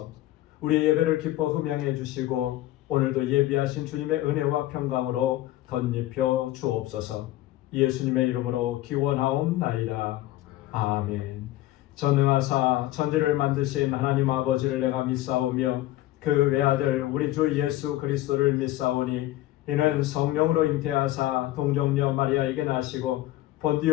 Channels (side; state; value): right; quieter; 15.8 dB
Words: 우리의 예배를 기뻐 흠양해 주시고 오늘도 예비하신 주님의 은혜와 평강으로 덧입혀 주옵소서. 예수님의 이름으로 기원하옵나이다. 아멘. 전능하사 천지를 만드신 하나님 아버지를 내가 믿사오며 그 외아들 우리 주 예수 그리스도를 믿사오니 이는 성령으로 잉태하사 동정녀 마리아에게 나시고